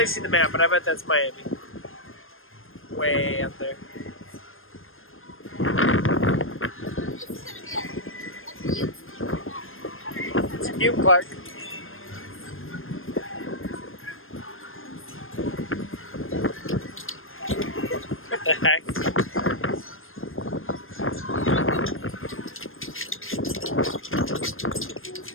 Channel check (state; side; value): late; right; 0.60 ms